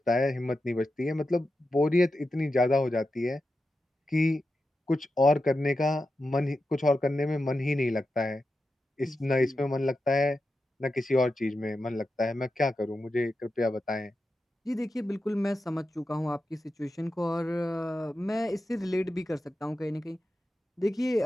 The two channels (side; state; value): both; normal; correlation 0.90